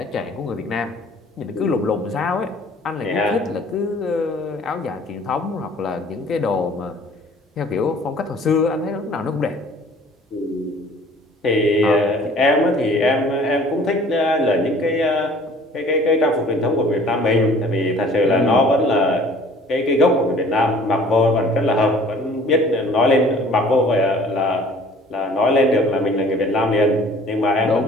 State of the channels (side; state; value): both; normal; correlation 0.51